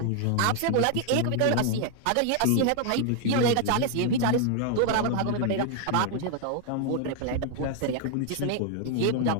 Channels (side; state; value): both; different; correlation 0.00